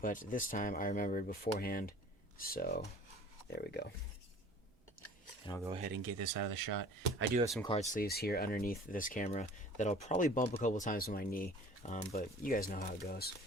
but this time I remembered beforehand, so there we go. And I'll go ahead and get this out of the shot. I do have some card sleeves here underneath this camera that I'll probably bump a couple times with my knee, but you guys know how it goes.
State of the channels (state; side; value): normal; both; correlation 0.47